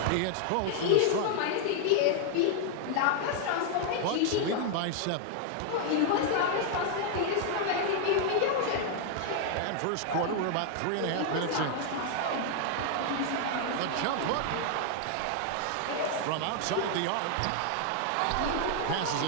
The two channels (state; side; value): different; both; correlation 0.00